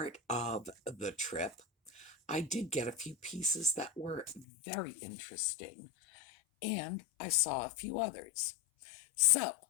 of the trip, I did get a few pieces that were very interesting, and I saw a few others. So,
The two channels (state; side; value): drops out; right; at 4.5 s